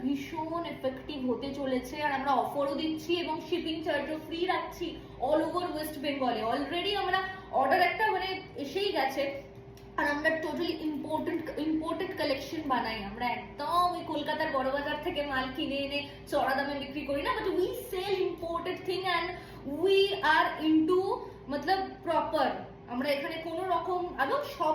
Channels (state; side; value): identical; both; correlation 1.00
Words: ভীষণ এফেক্টিভ হতে চলেছে, আর আমরা অফারও দিচ্ছি এবং শিপিং চার্জও ফ্রি রাখছি অল ওভার ওয়েস্ট বেঙ্গলে। অলরেডি আমরা অর্ডার একটা এসেই গেছে। আর আমরা টোটালি ইম্পোর্টেড কালেকশন বানাই। আমরা একদম ওই কলকাতার বড় বাজার থেকে মাল কিনে এনে চড়া দামে বিক্রি করি না, but we sell imported thing and we are into মতলব প্রপার। আমরা এখানে কোনো রকম, এবং সব